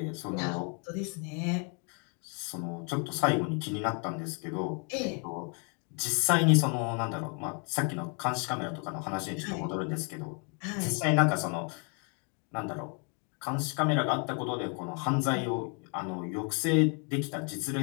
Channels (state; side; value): quieter; right; 37.8 dB